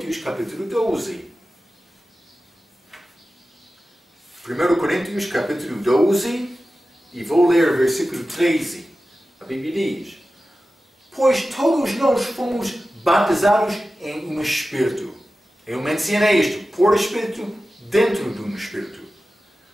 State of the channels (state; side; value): normal; both; correlation 0.94